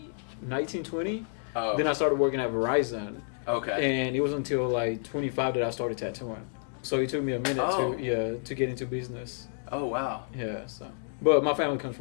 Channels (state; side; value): silent; right; 58 dB below the other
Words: 19, 20. Oh. Then I started working at Verizon, Okay. and it was until like 25 that I started tattooing. So it took me a minute Oh. to get into business. Oh, wow. Yeah. So, but my family comes